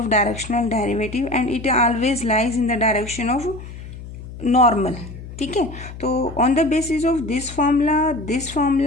directional derivative and it always lies in the direction of normal. ठीक है. तो on the basis of this formula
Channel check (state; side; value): noise; left; hum, 13 dB below the sound